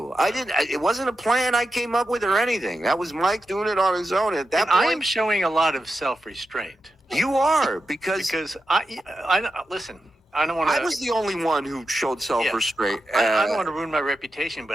It wasn't a plan I came up with or anything. That was Mike doing it on his own. At that point, I am showing a lot of self-restraint. You are because I listen. I don't want to. I was the only one who showed self-restraint. I don't want to ruin my reputation,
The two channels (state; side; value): normal; both; correlation 0.89